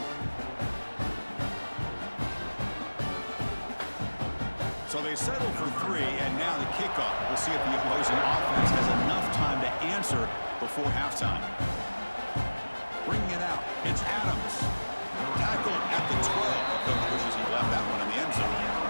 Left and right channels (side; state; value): both; inverted; correlation -1.00